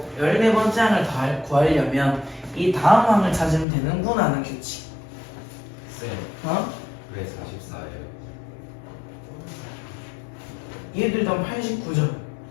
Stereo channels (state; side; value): drops out; right; at 3.7 s